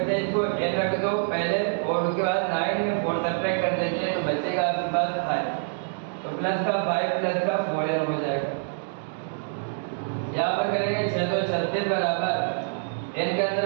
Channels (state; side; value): silent; left; digital silence